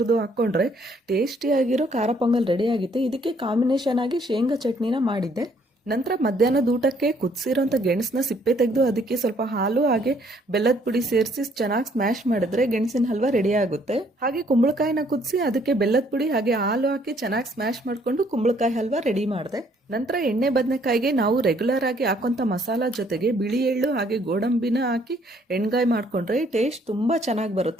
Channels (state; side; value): normal; both; correlation 0.65